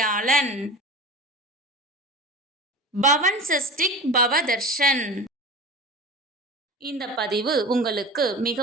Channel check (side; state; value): both; normal; correlation 0.33